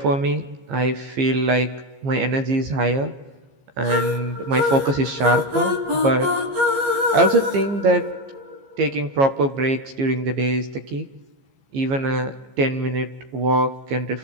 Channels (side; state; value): left; late; 15 ms